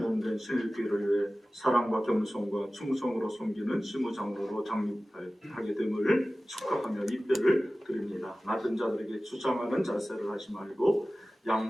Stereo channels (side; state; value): both; normal; correlation 0.96